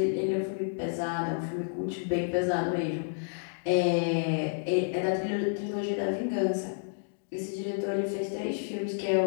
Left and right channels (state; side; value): silent; right; digital silence